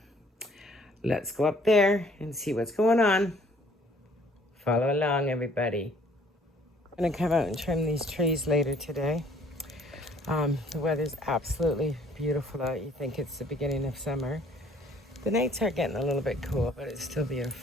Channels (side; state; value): both; normal; correlation 0.59